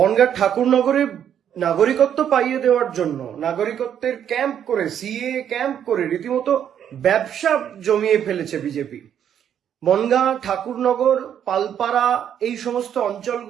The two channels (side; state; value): left; quieter; 9.3 dB